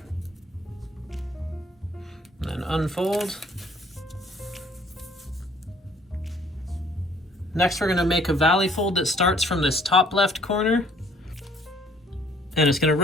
And then unfold. Next we're going to make a valley fold that starts from this top left corner, and it's going to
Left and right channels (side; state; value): both; normal; correlation 0.60